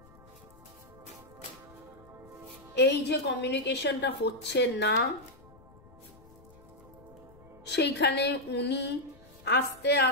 এই যে কমিউনিকেশনটা হচ্ছে না, সেইখানে উনি আস্তে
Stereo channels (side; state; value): left; noise; rumble, 24 dB below the sound